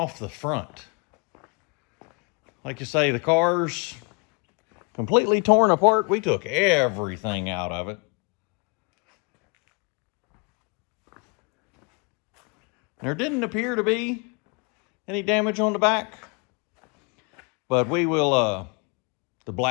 the front. Like you say, the car's completely torn apart. We took everything out of it. There didn't appear to be any damage on the back, but we will, the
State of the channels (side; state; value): right; quieter; 32.9 dB